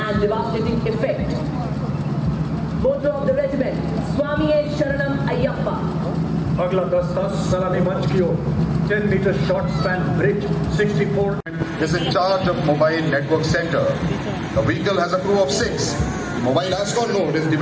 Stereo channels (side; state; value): both; identical; correlation 1.00